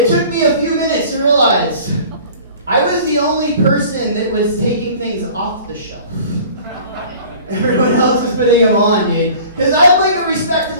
took me a few minutes to realize I was the only person that was taking things off the shelf. Everyone else was putting them on, dude. Because I'm like a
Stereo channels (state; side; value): inverted; both; correlation -0.46